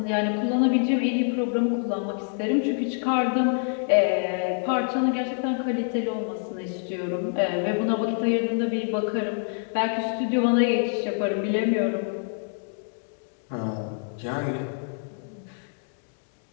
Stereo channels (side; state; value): right; silent; 61 dB below the other